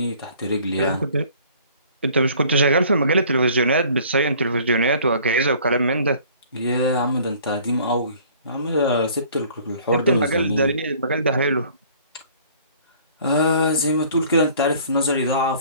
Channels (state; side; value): inverted; both; correlation -0.53